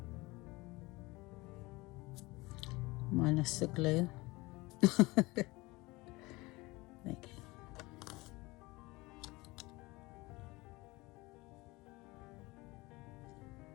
Minus the glue. There you go.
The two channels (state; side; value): quieter; right; 22.3 dB